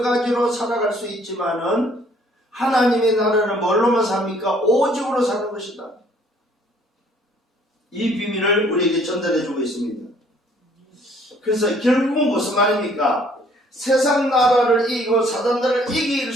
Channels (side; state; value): both; normal; correlation 0.60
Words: 가지로 살아갈 수 있지만은 하나님의 나라는 뭘로만 삽니까? 오직으로 사는 것이다. 이 비밀을 우리에게 전달해주고 있습니다. 그래서 결국은 무슨 말입니까? 세상 나라를 이기고 사단 나라를 이길